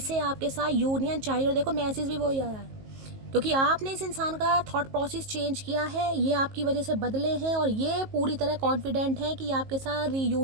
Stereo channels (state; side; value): late; left; 19 ms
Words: आपके साथ यूनियन चाहिए। और देखो मैसेज भी वही आया है, क्योंकि आपने इस इंसान का थॉट प्रोसेस चेंज किया है, ये आपकी वजह से बदले हैं, और ये पूरी तरह कॉन्फिडेंट हैं कि आपके साथ